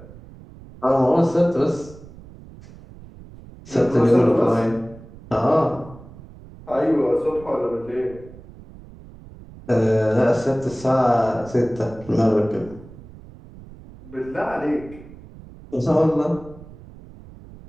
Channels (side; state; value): right; noise; rumble, 19 dB below the sound